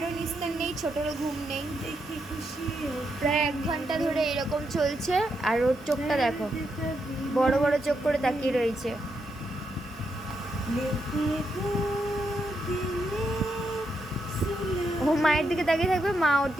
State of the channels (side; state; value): both; normal; correlation 0.81